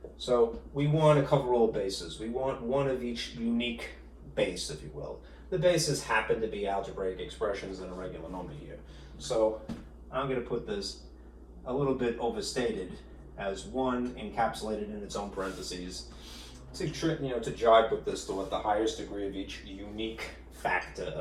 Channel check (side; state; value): both; identical; correlation 1.00